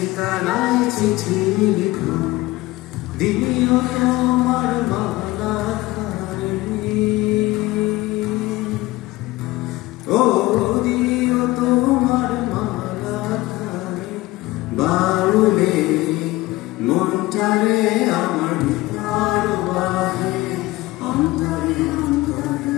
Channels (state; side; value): quieter; right; 19.1 dB